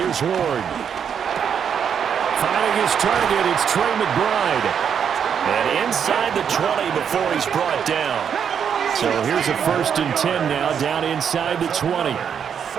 Ward. Finding his target, it's Trey McBride. And inside the 20 before he's brought down. So here's a 1st and 10 now, down inside the 20. Saints,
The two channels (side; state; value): left; quieter; 7.7 dB